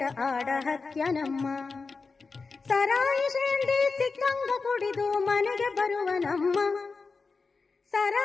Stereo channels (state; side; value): quieter; right; 4.4 dB